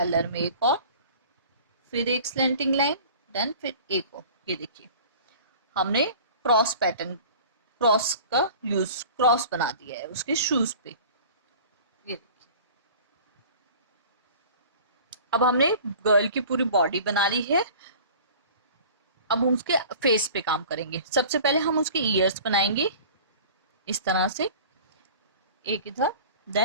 में एक और, फिर एक स्लैंटिंग लाइन, देन फिर एक और। ये देखिए हमने क्रॉस पैटर्न, क्रॉस का यूज, क्रॉस बना दिया है उसके शूज पे। ये देखिए, अब हमने गर्ल की पूरी बॉडी बना ली है। अब हम उसके फेस पे काम करेंगे। सबसे पहले हम उसके ईयर्स बनाएंगे इस तरह से, एक इधर,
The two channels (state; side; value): inverted; both; correlation -0.43